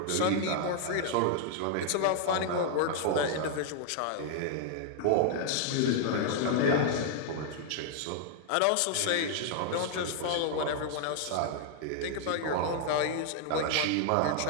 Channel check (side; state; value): both; different; correlation -0.01